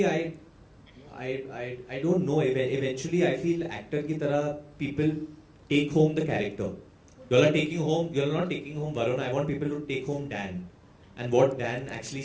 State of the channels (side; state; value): both; identical; correlation 1.00